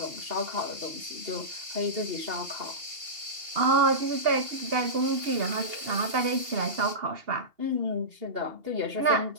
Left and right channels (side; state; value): left; late; 2.8 ms